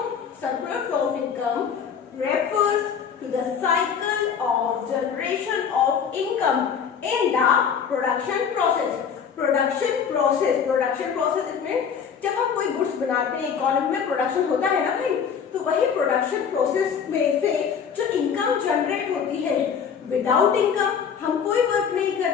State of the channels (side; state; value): right; quieter; 7.1 dB